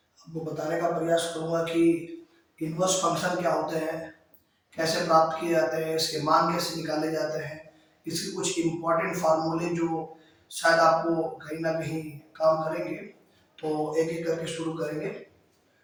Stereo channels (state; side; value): identical; both; correlation 1.00